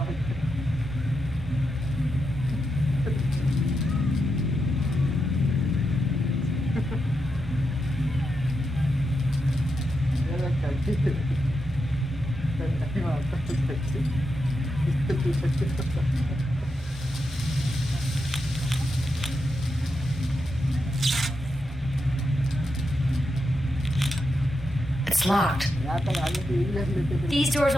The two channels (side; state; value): both; normal; correlation 0.86